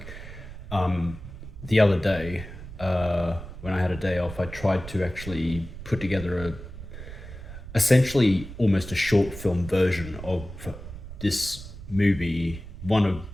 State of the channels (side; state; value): right; noise; rumble, 12 dB below the sound